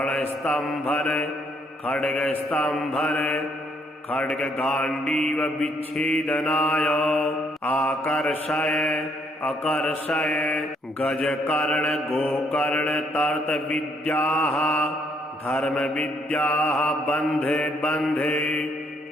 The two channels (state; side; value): normal; both; correlation 0.70